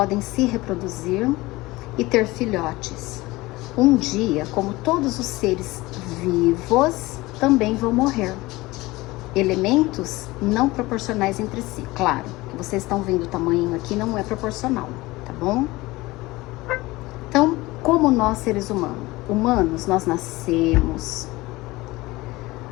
se reproduzir e ter filhotes. Um dia, como todos os seres vivos, também vão morrer. Elementos não proporcionais entre si. Claro, que vocês estão vendo o tamanho aqui não é proporcional, tá bom? Então, como nós seres humanos, nós nascemos,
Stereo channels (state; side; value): quieter; right; 20.4 dB